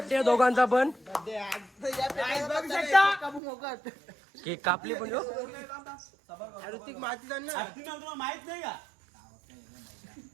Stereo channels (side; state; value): left; drops out; at 3.4 s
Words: दोघांचा पण. केक कापली पण ऋतिक माहिती माहित नाही का